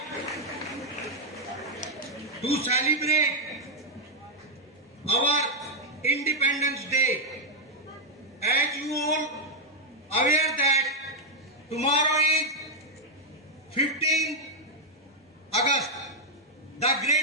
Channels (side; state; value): both; normal; correlation 0.00